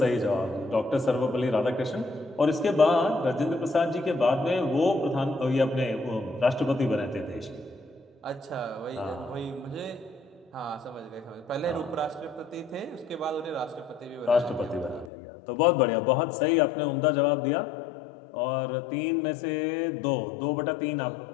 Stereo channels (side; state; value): right; drops out; at 15.1 s